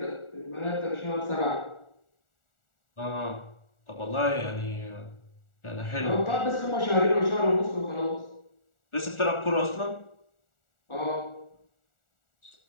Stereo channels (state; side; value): late; right; 1.4 ms